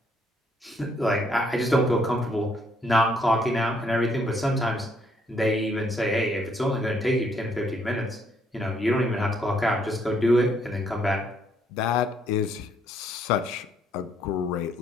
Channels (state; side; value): normal; both; correlation 0.69